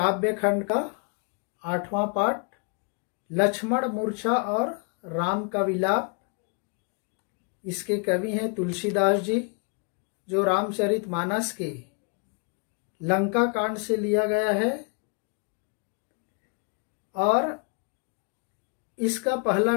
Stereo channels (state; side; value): quieter; right; 35.1 dB